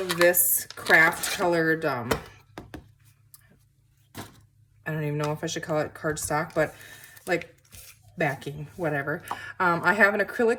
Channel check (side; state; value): both; identical; correlation 1.00